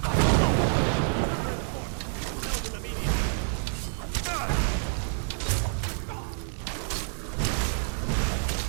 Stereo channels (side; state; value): left; silent; digital silence